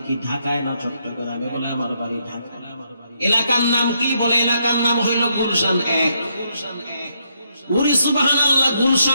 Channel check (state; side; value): inverted; both; correlation -0.76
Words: কি ঢাকায় না চট্টগ্রামে? বলে আমার বাড়ি ঢাকা। এলাকার নাম কি? বলে এলাকার নাম হইল গুলশান 1। ওরে সুবহানাল্লাহ,